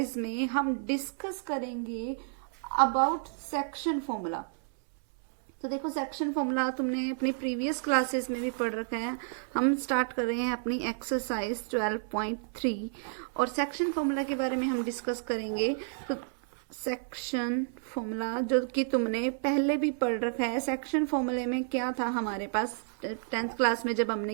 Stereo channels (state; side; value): silent; left; 57 dB below the other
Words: में हम डिस्कस करेंगे अबाउट सेक्शन फॉर्मूला। तो देखो सेक्शन फॉर्मूला तुमने अपनी प्रीवियस क्लासेस में भी पढ़ रखा है। हम स्टार्ट कर रहे हैं अपनी एक्सरसाइज 12.3 और सेक्शन फॉर्मूला के बारे में हम डिस्कस करेंगे। तो सेक्शन फॉर्मूला जो कि तुमने पहले भी पढ़ रखा है। सेक्शन फॉर्मूले में क्या था हमारे पास 10th क्लास में जब हमने